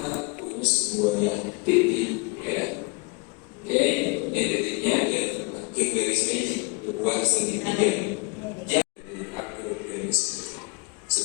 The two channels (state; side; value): quieter; right; 27.6 dB